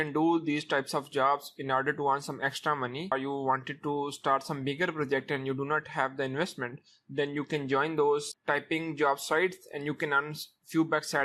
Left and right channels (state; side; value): identical; both; correlation 1.00